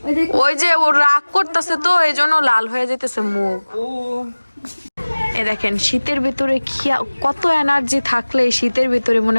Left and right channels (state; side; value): inverted; both; correlation -1.00